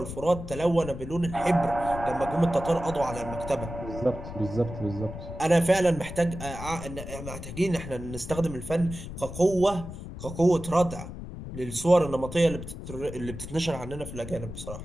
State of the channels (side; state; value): left; noise; rumble, 10 dB below the sound